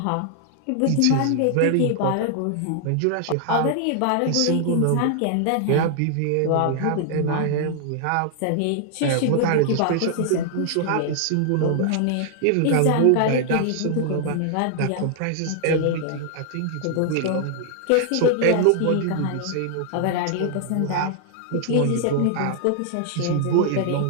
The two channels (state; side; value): different; both; correlation 0.00